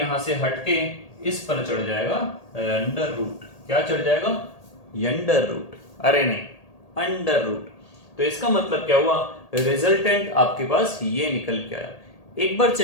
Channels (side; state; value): right; late; 1.8 ms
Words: से हटके इस पर चढ़ जाएगा अंडर रूट। क्या चढ़ जाएगा? Under root. अरे नहीं, अंडर रूट। तो इसका मतलब क्या हुआ? रिजल्टेंट आपके पास ये निकल के आया। एक बार